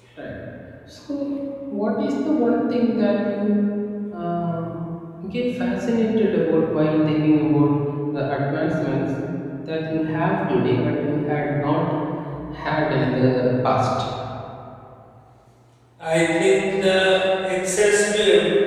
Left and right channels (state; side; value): identical; both; correlation 1.00